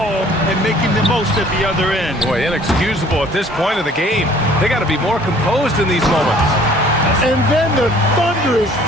and making the most at the other end. Boy, inexcusable at this point of the game. They got to be more composed in these moments. And then the thunderous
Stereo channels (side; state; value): both; normal; correlation 0.55